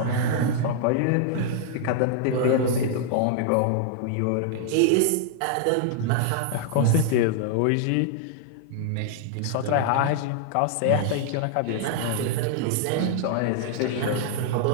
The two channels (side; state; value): both; different; correlation -0.01